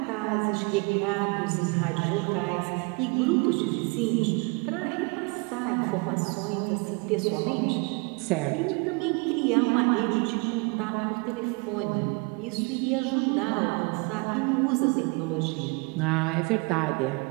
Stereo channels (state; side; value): quieter; left; 30.5 dB